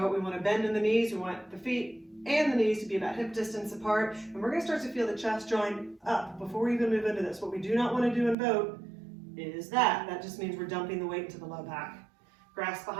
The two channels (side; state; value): left; drops out; at 8.3 s